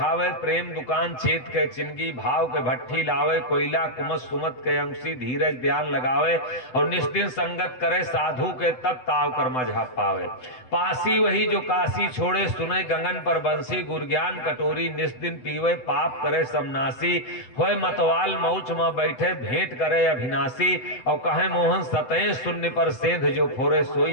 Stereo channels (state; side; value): late; right; 7.9 ms